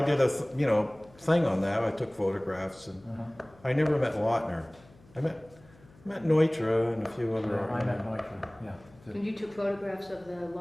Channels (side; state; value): left; noise; hum, 26 dB below the sound